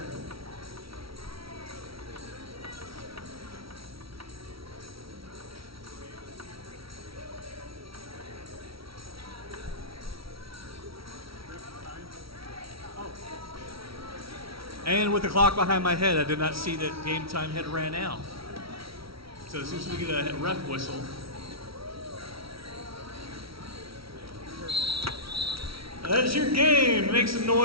And with the clock behind my head, I did not see that game time had ran out. So as soon as we get a ref whistle, that is your game. Make some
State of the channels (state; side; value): late; left; 0.75 ms